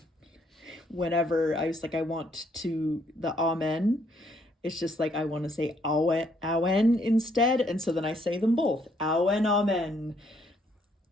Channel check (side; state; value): both; normal; correlation 0.69